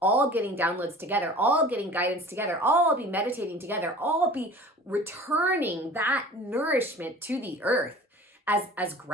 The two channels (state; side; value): normal; both; correlation 0.42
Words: all getting downloads together, all getting guidance together, all be meditating together, all be returning that nourishment to the earth as